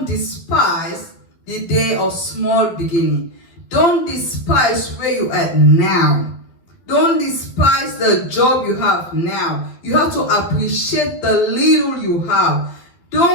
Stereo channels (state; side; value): late; right; 12 ms